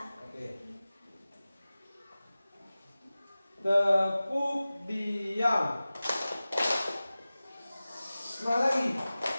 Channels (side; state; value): both; inverted; correlation -0.97